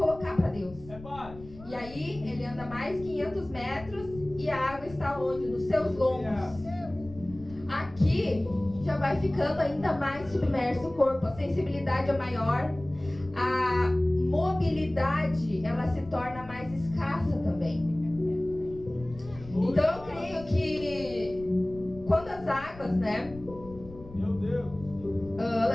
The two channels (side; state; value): left; noise; rumble, 17 dB below the sound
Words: para Deus. E aí ele anda mais 500 metros e a água está onde? Nos seus lombos. Aqui já vai ficando ainda mais submerso o corpo, a sensibilidade é maior, a mobilidade ela se torna mais escassa também. Então eu creio que quando as águas, Meu Deus,